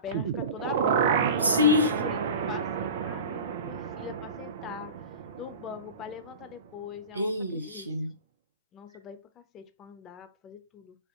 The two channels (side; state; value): both; inverted; correlation -0.33